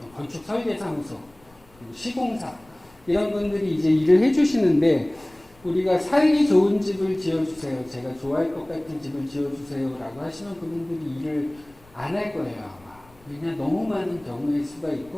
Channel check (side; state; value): left; noise; rumble, 28 dB below the sound